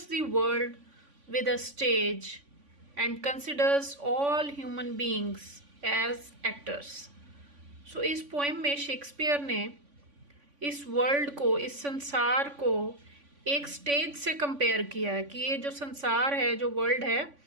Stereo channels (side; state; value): left; late; 3.5 ms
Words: the world with a stage and considers all human beings as actors. So इस poem में Shakespeare ने इस world को, इस संसार को एक stage से कंपेयर किया है कि ये जो संसार है, जो वर्ल्ड है,